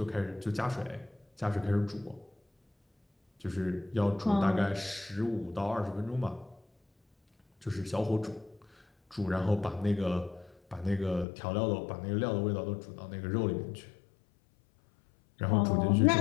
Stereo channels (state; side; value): drops out; right; at 11.2 s